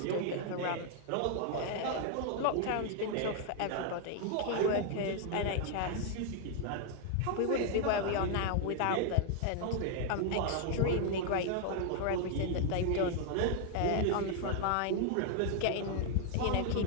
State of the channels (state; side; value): different; both; correlation 0.00